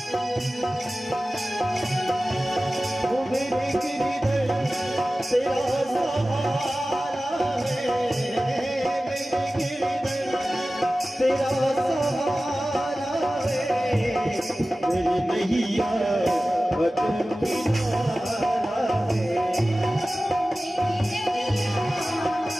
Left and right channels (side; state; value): both; normal; correlation 0.96